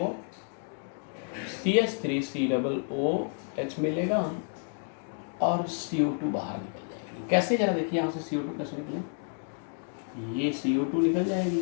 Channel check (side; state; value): right; silent; 58 dB below the other